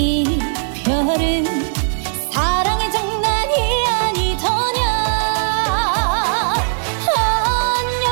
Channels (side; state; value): left; silent; digital silence